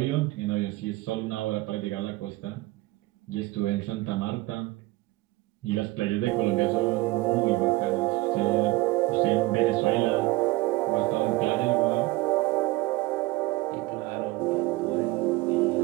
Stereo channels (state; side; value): quieter; left; 20.0 dB